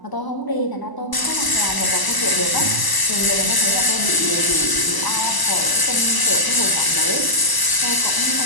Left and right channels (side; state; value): right; late; 1.0 ms